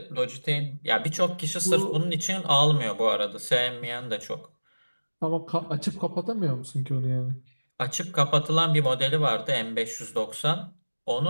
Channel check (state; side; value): inverted; both; correlation -1.00